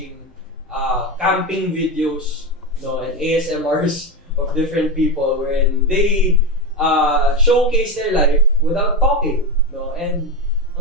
camping videos, no, and ASMRs of different people wherein they showcase their life without talking, no, and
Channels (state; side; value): normal; both; correlation 0.16